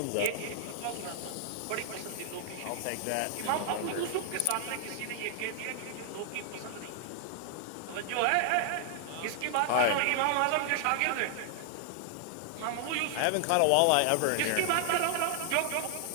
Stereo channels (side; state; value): both; different; correlation 0.00